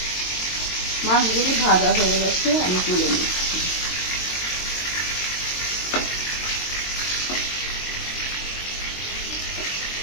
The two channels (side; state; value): right; late; 22 ms